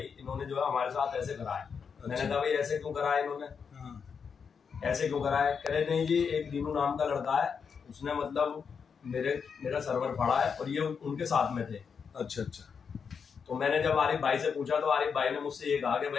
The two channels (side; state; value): right; quieter; 6.3 dB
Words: इन्होंने जो है हमारे साथ ऐसे करा है। अच्छा। मैंने कहा भाई ऐसे क्यों करा है इन्होंने? ऐसे क्यों करा है? कह रहे नहीं जी, एक रीनू नाम का लड़का है, उसने मतलब मेरा सर्वर फाड़ा है और ये उनके साथ में थे। अच्छा अच्छा। तो मैंने जब आरिफ भाई से पूछा तो आरिफ भाई ने मुझसे ये कहा कि